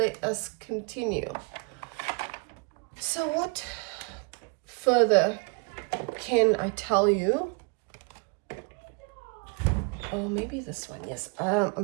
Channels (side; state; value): left; quieter; 34.0 dB